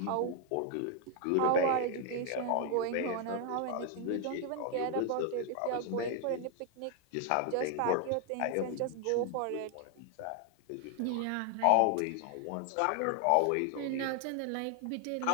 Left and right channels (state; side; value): different; both; correlation 0.00